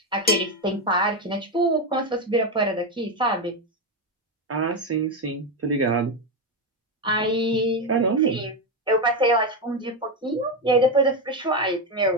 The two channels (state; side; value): normal; both; correlation 0.10